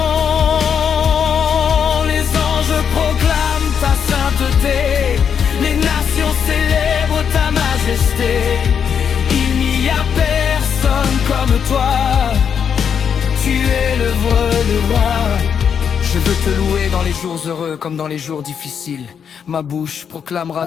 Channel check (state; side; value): quieter; right; 7.4 dB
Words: Les anges proclament ta sainteté, les nations célèbrent ta majesté. Il n'y a personne comme toi, tu es le roi. Je veux te louer dans les jours heureux comme dans les jours difficiles. Ma bouche proclamera